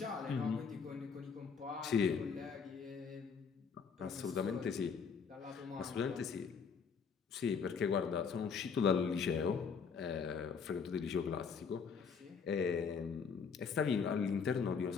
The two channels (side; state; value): right; quieter; 6.0 dB